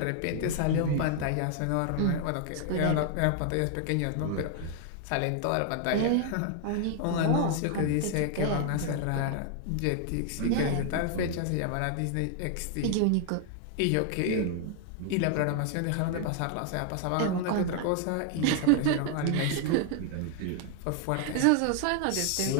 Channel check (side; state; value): both; different; correlation 0.00